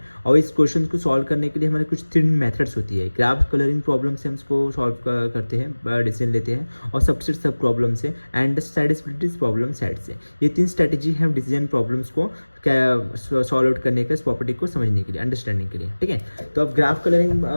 और इस क्वेश्चन को सॉल्व करने के लिए हमारे कुछ 3 मेथड्स होती है। ग्राफ कलरिंग प्रॉब्लम से हम इसको सॉल्व करते हैं, डिसीजन लेते हैं, और सबसेट सब प्रॉब्लम से एंड सेटिस्फिलिटी प्रॉब्लम सेट से। ये 3 स्ट्रेटेजी है डिसीजन प्रॉब्लम्स को सॉल्व आउट करने के, इस प्रॉपर्टी को समझने के लिए, अंडरस्टैंडिंग के लिए, ठीक है। तो अब ग्राफ कलरिंग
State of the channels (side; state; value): both; inverted; correlation -1.00